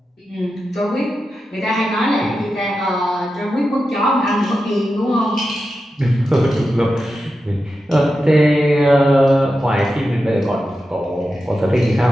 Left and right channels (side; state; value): both; normal; correlation 0.90